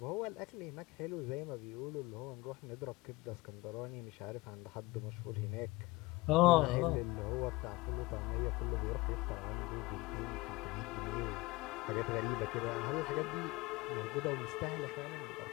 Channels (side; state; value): right; quieter; 21.8 dB